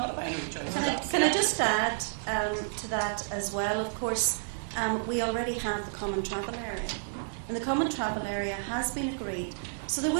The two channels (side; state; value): left; silent; digital silence